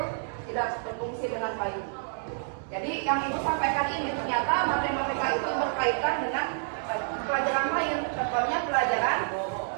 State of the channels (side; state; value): left; silent; digital silence